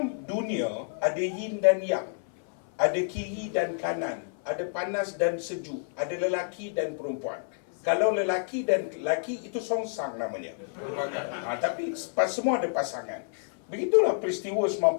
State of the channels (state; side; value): silent; right; 57 dB below the other